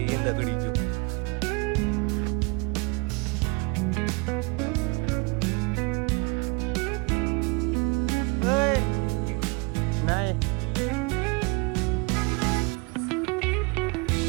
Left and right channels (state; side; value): quieter; left; 28.7 dB